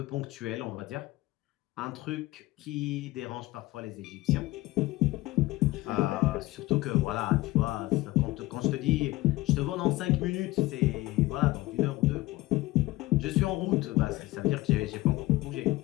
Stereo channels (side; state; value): right; quieter; 18.9 dB